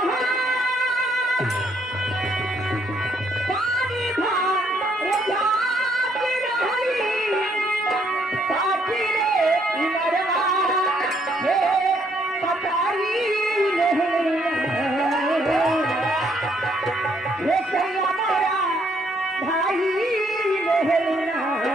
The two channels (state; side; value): normal; both; correlation 0.69